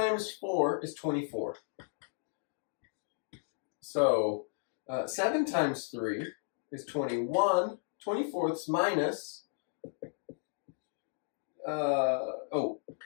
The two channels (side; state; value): right; silent; digital silence